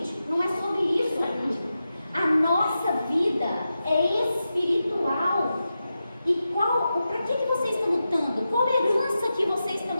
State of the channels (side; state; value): both; inverted; correlation -0.91